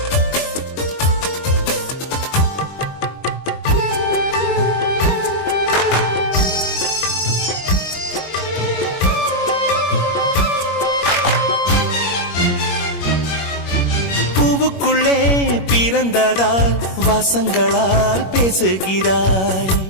பூவுக்குள்ளே பிறந்ததால் வாசங்களால் பேசுகிறாய்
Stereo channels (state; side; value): late; right; 21 ms